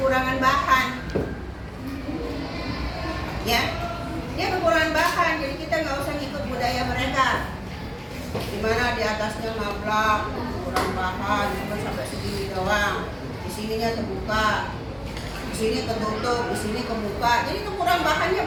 bahan. Ya, dia kekurangan bahan. Jadi kita nggak usah ikut budaya mereka. Dimana di atasnya ngablak, kurang bahan, cuma sampai segini doang. Di sininya terbuka, di sini ketutup, di sini kebuka. Jadi kurang bahannya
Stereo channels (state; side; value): identical; both; correlation 1.00